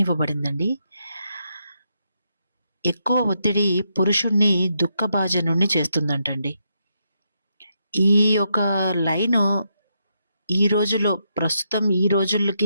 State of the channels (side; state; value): both; inverted; correlation -0.80